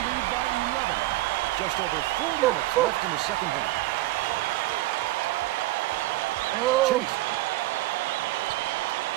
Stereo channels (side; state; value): left; quieter; 17.7 dB